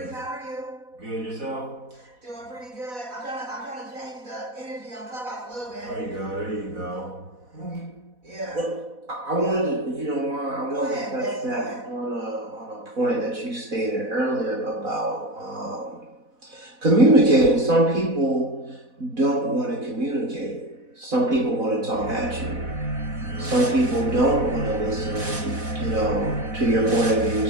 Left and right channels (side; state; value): left; late; 4.1 ms